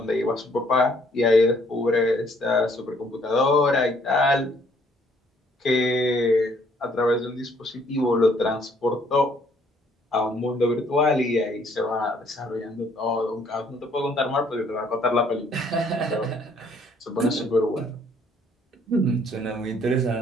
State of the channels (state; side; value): normal; both; correlation 0.64